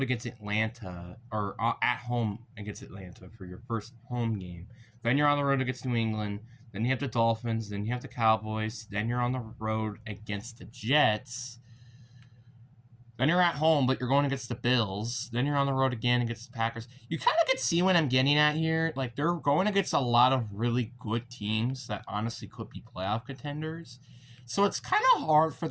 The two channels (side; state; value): both; identical; correlation 1.00